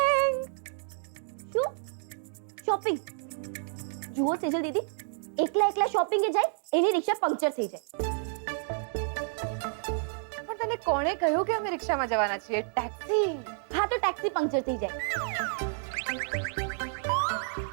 શું શોપિંગ? જુઓ સેજલ દીદી, એકલા શોપિંગે જાય એની રિક્ષા પંક્ચર થઈ જાય. પણ તને કોણે કહ્યું કે અમે રિક્ષામાં જવાના છીએ? ટેક્સી. હા તો ટેક્સી પંક્ચર થઈ જાય.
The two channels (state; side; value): silent; left; 58 dB below the other